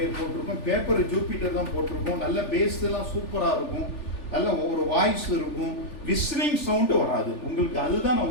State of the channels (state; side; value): late; right; 3.4 ms